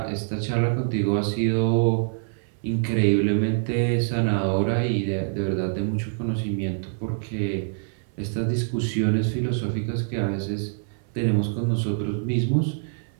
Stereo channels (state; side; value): silent; left; 57 dB below the other